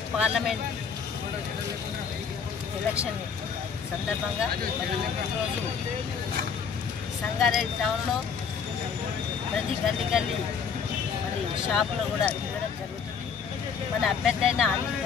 parliament election సందర్భంగా ఈరోజు సంగారెడ్డి టౌన్లో ప్రతి గల్లీ మరి షాపులో కూడా తిరగడం జరుగుతుంది. మన అభ్యర్థి అయిన అనిల్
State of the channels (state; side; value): quieter; right; 6.5 dB